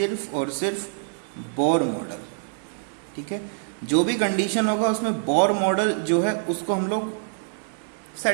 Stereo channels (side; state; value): left; silent; 61 dB below the other